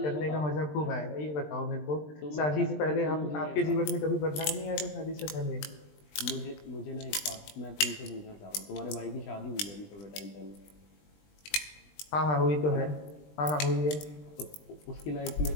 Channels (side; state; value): right; late; 20 ms